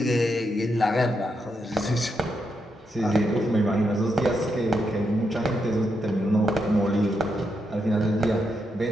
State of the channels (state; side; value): normal; both; correlation 0.82